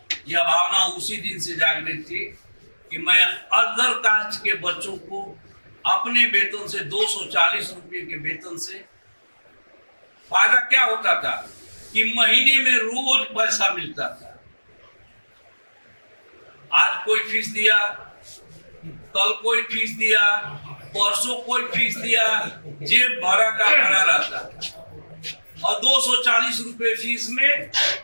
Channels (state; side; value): inverted; both; correlation -1.00